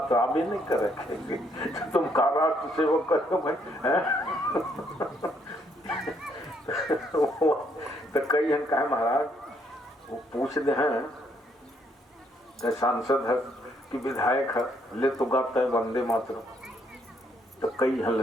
तो अभी नहीं कर रखेंगे। तो तुम का राष्ट्र सेवक करो भाई, तो कई जन कहे महाराज वो पूछते हैं कि सांसद है कि विधायक है, ले तो गाता है वंदे मातरम, तो कई हल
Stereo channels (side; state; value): both; normal; correlation 0.71